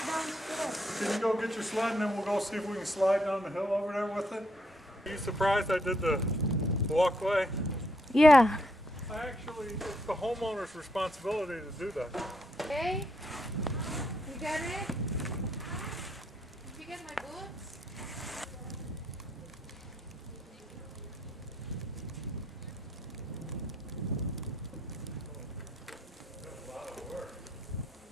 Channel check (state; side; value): normal; both; correlation 0.74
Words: you go get your sled and then we'll go see if we can slide down the hill over there with it? Are you surprised I did the walkway? Yeah. Actually, it's the homeowner's responsibility to do that. Okay. You got it? Did you get my boots?